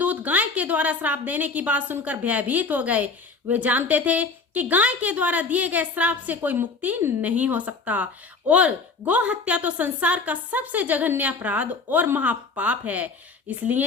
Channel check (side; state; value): right; quieter; 4.3 dB